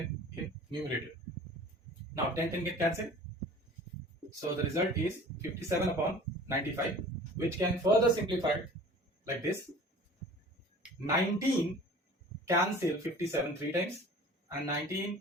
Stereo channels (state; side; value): normal; both; correlation 0.44